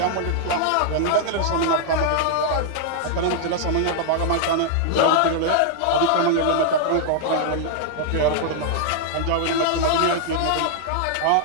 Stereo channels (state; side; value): different; both; correlation -0.01